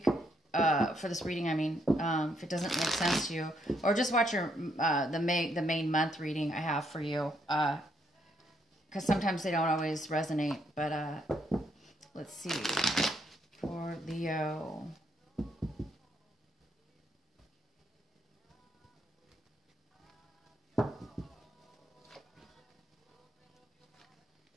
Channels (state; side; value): normal; both; correlation 0.74